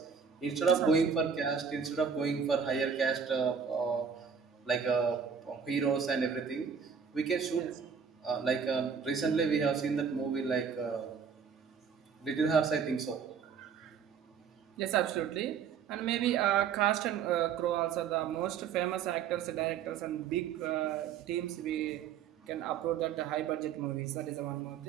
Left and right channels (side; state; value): left; quieter; 6.7 dB